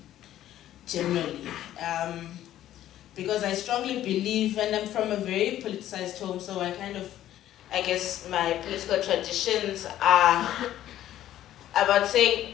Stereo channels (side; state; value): right; quieter; 12.6 dB